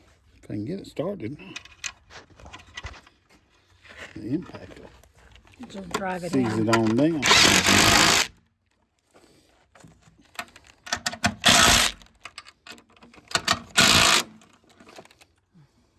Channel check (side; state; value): both; identical; correlation 1.00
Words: I can get it started, the impact will Just drive it seize in. it on down.